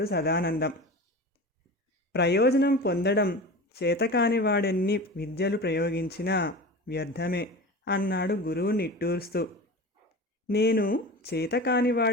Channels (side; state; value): both; normal; correlation 0.32